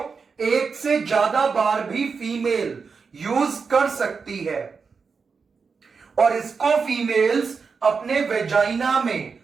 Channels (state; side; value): quieter; left; 5.2 dB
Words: एक से ज्यादा बार भी फीमेल यूज कर सकती है और इसको फीमेल्स अपने वेजाइना में